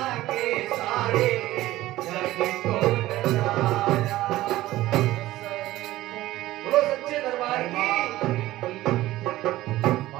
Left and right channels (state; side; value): quieter; left; 16.2 dB